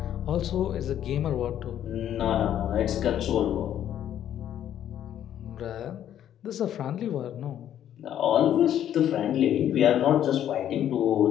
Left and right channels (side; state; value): right; quieter; 10.7 dB